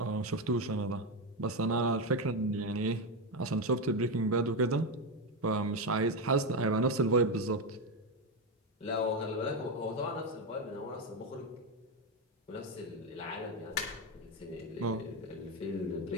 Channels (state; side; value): normal; both; correlation 0.10